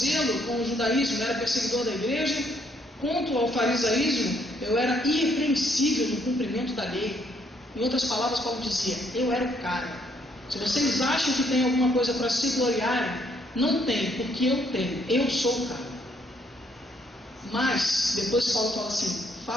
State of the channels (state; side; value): normal; both; correlation 0.69